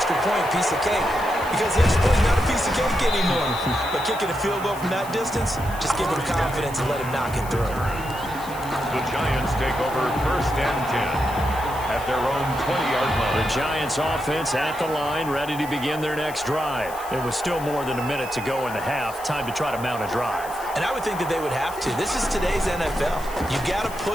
point, piece of cake. Because the extra point is not a piece of cake anymore. But kicking a field goal from that distance, just give him confidence and let him knock it through. The Giants take over 1st and 10 at their own 20-yard line. The Giants offense at the line, ready to begin their next drive. It was still more than a minute to go in the half. Time to try to mount a drive. And I would think that they would have to. This is today's NFL. You got to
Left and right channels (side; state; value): left; noise; hiss, 16 dB below the sound